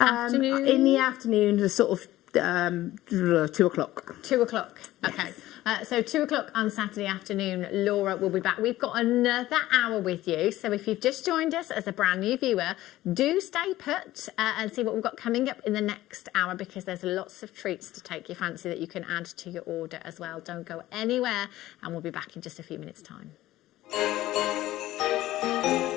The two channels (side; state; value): right; quieter; 15.7 dB